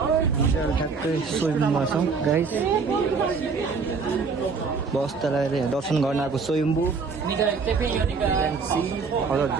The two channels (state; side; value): quieter; left; 5.0 dB